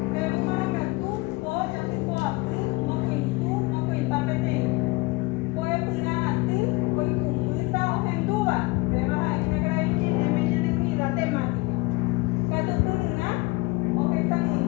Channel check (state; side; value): quieter; right; 23.2 dB